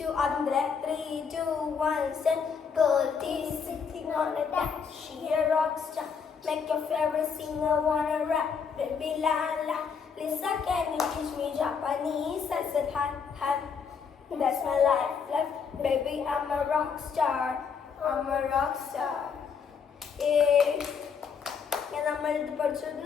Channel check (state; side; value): quieter; right; 6.2 dB